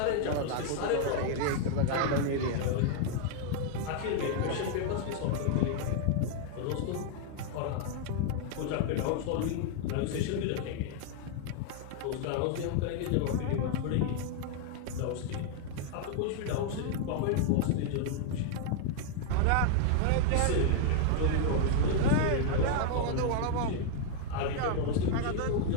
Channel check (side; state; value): both; different; correlation 0.00